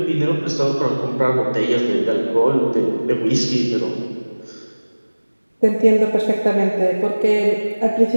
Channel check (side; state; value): both; inverted; correlation -1.00